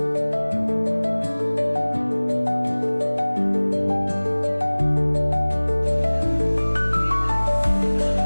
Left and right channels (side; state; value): both; inverted; correlation -1.00